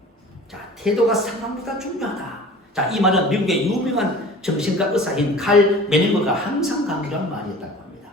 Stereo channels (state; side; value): normal; both; correlation 0.42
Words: 자, 태도가 상황보다 중요하다. 자, 이 말은 미국의 유명한 정신과 의사인 칼 메닝거가 항상 강조한 말이었다고 합니다.